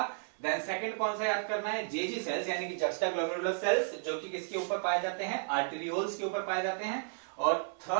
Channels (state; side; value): silent; left; 56 dB below the other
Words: देन सेकंड कौन सा याद करना है? जेजी सेल्स, यानी कि जक्स्टा ग्लोमेरुलर सेल्स, जो कि किसके ऊपर पाए जाते हैं? आर्टेरियोल्स के ऊपर पाए जाते हैं। और